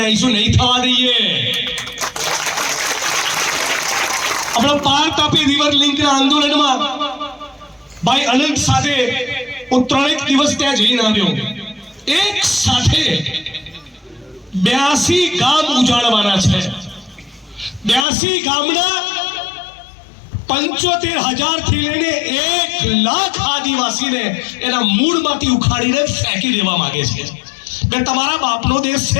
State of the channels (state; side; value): drops out; right; at 18.1 s